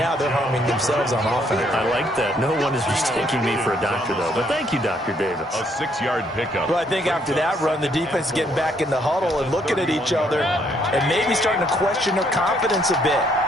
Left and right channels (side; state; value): both; normal; correlation 0.69